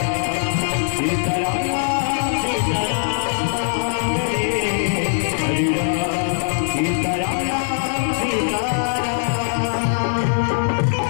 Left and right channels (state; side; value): silent; right; 65 dB below the other